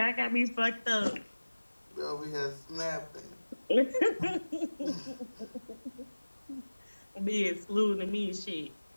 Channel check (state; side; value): inverted; both; correlation -1.00